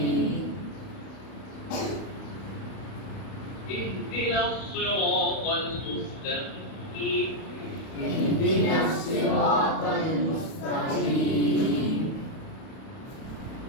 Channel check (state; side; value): late; right; 31 ms